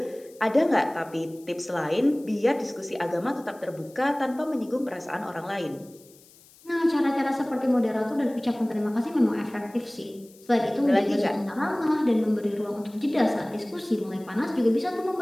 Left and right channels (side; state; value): left; noise; hiss, 26 dB below the sound